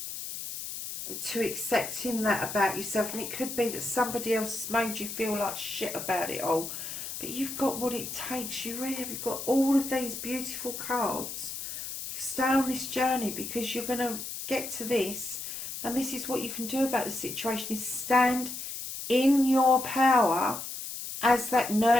to accepting that about yourself, and it could be that somebody else has made you feel like shit about it all. But you've got what it takes. You really have. You've got all of these beautiful cards stay on this journey, because you're going to get to this, and this is what you can do about the situation, is stand in your power as that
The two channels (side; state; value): left; noise; hiss, 7 dB below the sound